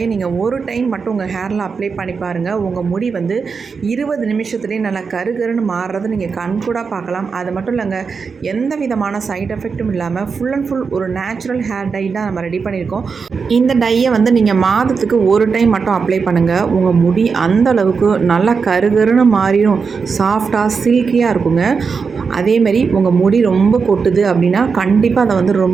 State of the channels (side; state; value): left; quieter; 5.3 dB